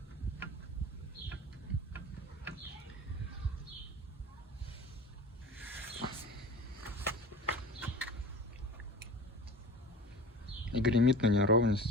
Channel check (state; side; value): normal; both; correlation 0.37